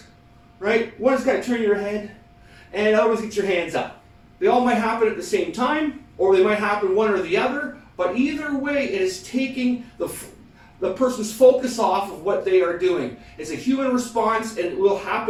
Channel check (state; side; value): identical; both; correlation 1.00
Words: right? One is to turn your head, and the other is to get your hands up. They all might happen at the same time, or they might happen one or the other, but either way, it is taking the person's focus off of what they are doing. It's a human response, and it will